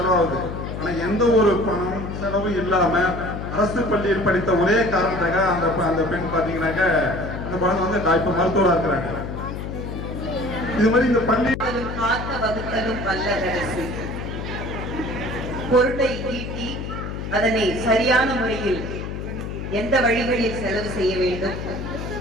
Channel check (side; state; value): left; noise; hum, 6 dB below the sound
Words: ஆனா எந்த ஒரு பணம் செலவும் இல்லாம அரசு பள்ளியில் படித்த ஒரே காரணத்துக்காக அந்த பெண் பாத்தீங்கன்னாக்க அந்த குழந்தை வந்து இப்ப மருத்துவரா இருக்கிறாங்க. இது மாதிரி இந்த பள்ளி காத்த வகுத்தலும் வல்லரசு பொருளை ஈட்டி அதனை சரியான முறையில் எந்த வழிகளில் செலவு செய்ய வேண்டும்,